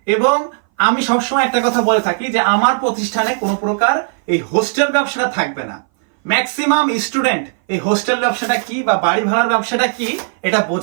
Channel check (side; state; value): left; silent; 60 dB below the other